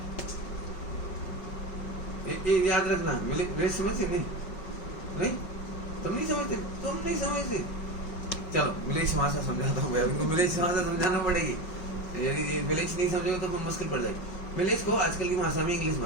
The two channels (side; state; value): right; late; 5.4 ms